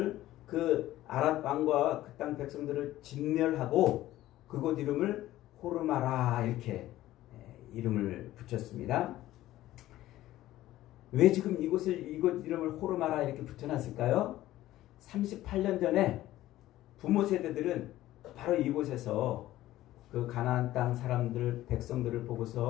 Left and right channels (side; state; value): right; quieter; 15.0 dB